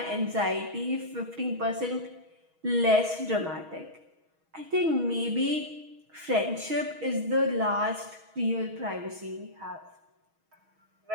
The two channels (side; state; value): left; late; 6.3 ms